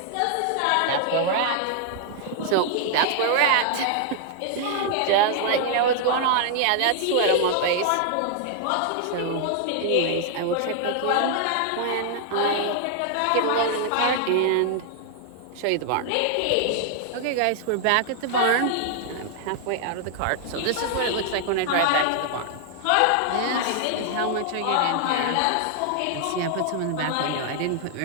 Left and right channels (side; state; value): both; different; correlation 0.00